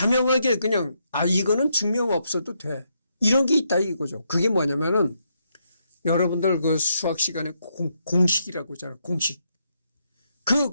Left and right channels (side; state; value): both; inverted; correlation -0.78